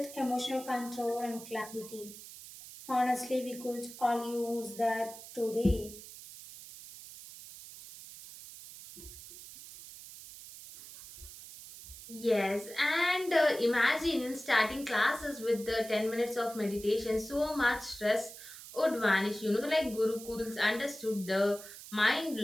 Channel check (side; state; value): right; noise; hiss, 15 dB below the sound